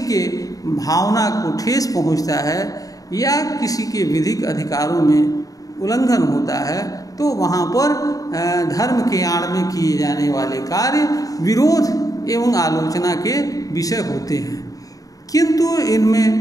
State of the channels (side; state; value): right; late; 0.17 ms